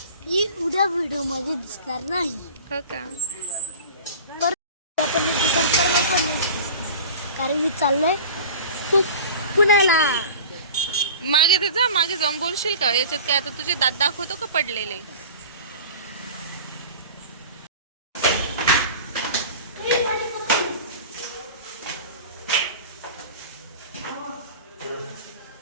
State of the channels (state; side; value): inverted; both; correlation -0.37